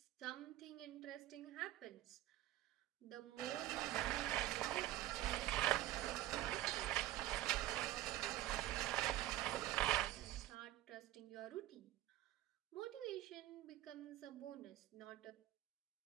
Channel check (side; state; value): left; quieter; 14.9 dB